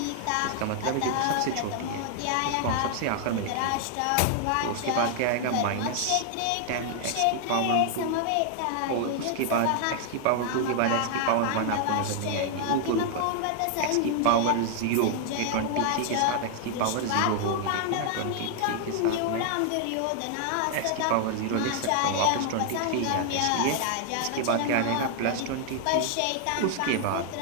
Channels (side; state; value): both; different; correlation 0.00